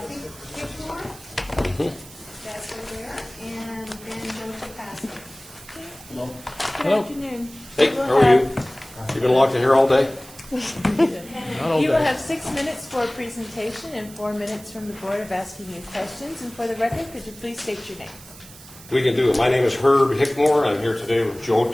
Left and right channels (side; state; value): right; noise; hiss, 19 dB below the sound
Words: That's over there, and then Joe Tapasco. Hello. Good afternoon. Hey, how are you? You been locked in here all day? Not all You will day. have 6 minutes for a presentation and 4 minutes from the board of asking you questions. And for the record, could you please state your name? We can do it. My name is Herb Hickmore. I'm here today with Joe